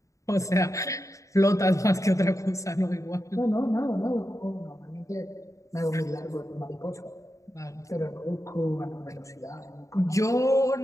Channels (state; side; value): late; right; 0.15 ms